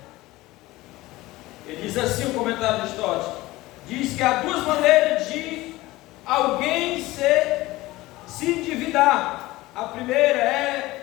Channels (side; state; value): right; quieter; 18.8 dB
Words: Ele diz assim, o comentário de Stott diz que há duas maneiras de alguém se endividar. A primeira é